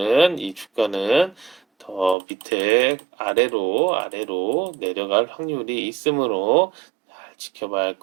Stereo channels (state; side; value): drops out; left; at 2.1 s